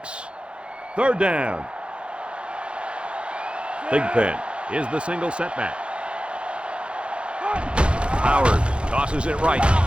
Third down. Thigpen is the single setback. Howard tosses it right.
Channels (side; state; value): left; late; 0.057 ms